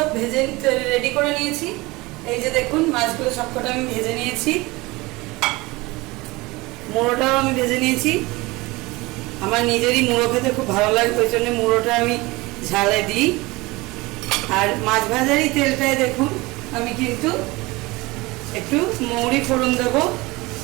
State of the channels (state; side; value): quieter; left; 22.3 dB